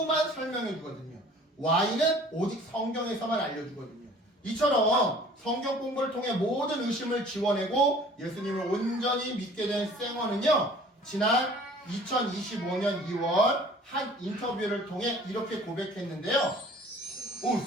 설명해주거든요. Y는 오직 성경에서만 알려주거든요. 이처럼 성경 공부를 통해 모든 의심을 지워내고 예수님을 온전히 믿게 된 쌩어는요. 지난 2025년 2월 한 인터뷰를 통해 이렇게 고백했는데요.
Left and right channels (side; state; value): both; normal; correlation 0.50